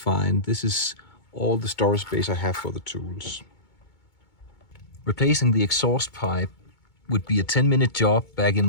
This is all the storage space I have for the tools. Replacing the exhaust pipe would be a 10-minute job back in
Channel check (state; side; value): late; right; 2.2 ms